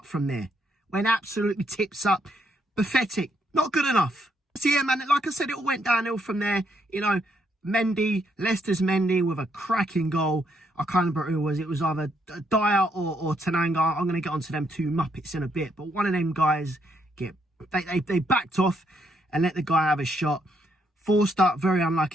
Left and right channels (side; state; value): both; normal; correlation 0.74